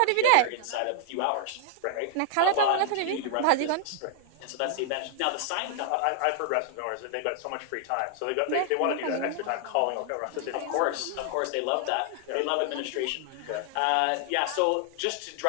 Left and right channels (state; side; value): different; both; correlation 0.00